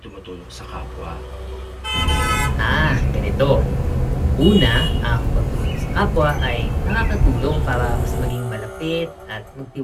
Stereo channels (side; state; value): both; identical; correlation 1.00